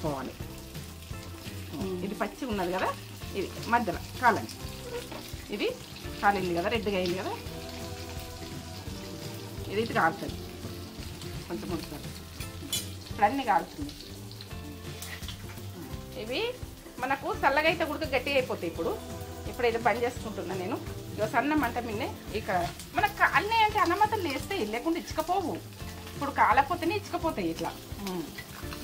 ఇది పచ్చిగా ఉన్నది కదా, ఇది మధ్యలో కాలండి. ఇది కాలింది కదా, రెడ్గా అయింది కదా, ఇది ఇటు కాలుతుంది. కొంచెం ఉడుకుతుంది. ఇప్పుడు అన్నీ కాలుతుంది. ఇవి మనకు చల్లగా అయితే ఉడక గట్టిగా అయిపోతాయి. ఇప్పుడైతే బంద్ చేసుకుంటున్నాను నేను. ఇక సన్న మంట మిన్నే ఇక్కడ మనకు అన్నీ అంటే అన్నమతలు వేస్తాయి, లేకుండా ఇచ్చకపోవు. ఇప్పుడు కాలపోతేనే ఇచ్చకపోతాయి ఇట్లా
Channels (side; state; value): both; identical; correlation 1.00